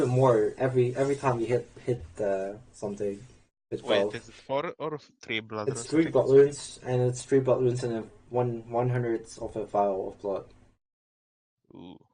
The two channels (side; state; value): both; identical; correlation 1.00